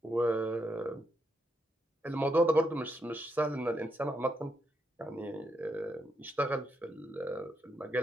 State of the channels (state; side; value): normal; both; correlation 0.80